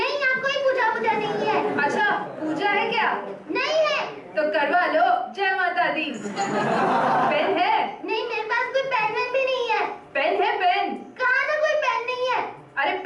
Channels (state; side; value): identical; both; correlation 1.00